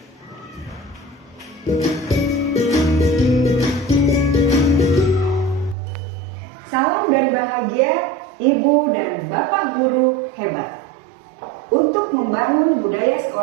Salam dan bahagia Ibu dan Bapak guru hebat. Untuk membangun budaya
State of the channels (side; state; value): left; drops out; at 5.8 s